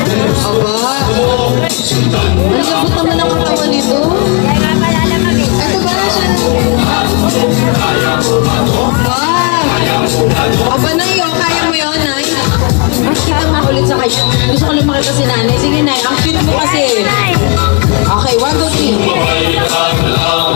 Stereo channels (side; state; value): right; quieter; 33.2 dB